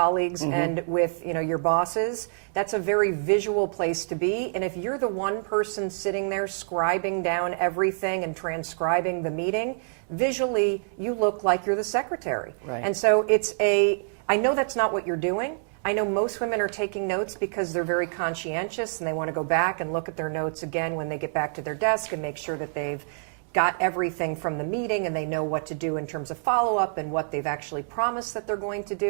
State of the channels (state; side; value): silent; left; digital silence